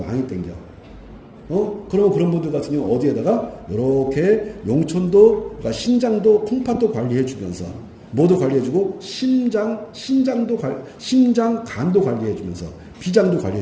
당겨. 그러면 그런 분들 같은 경우 어디에다가 이렇게 용천도, 그러니까 신장도, 콩팥도 관리해 주면서 뭐도 관리해 주고 심장, 간도 관리해 주면서 비장도 관리해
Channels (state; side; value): identical; both; correlation 1.00